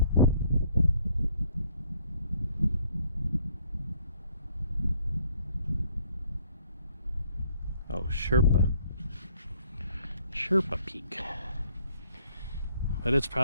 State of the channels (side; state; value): both; inverted; correlation -0.63